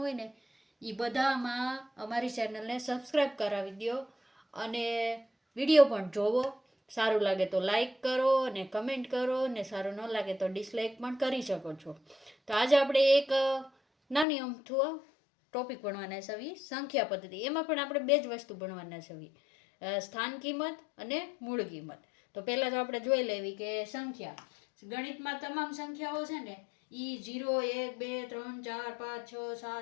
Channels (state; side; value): drops out; right; at 14.2 s